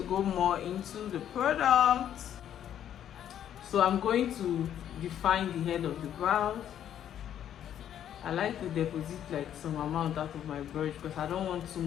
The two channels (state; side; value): quieter; right; 10.2 dB